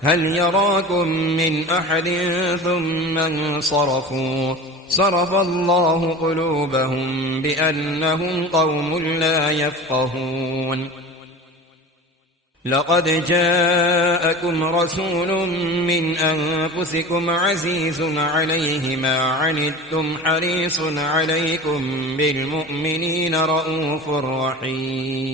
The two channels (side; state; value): both; normal; correlation 0.34